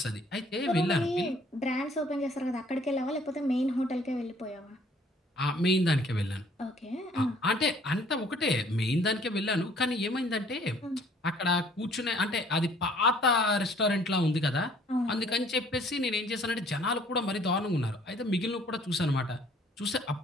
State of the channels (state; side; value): normal; both; correlation 0.58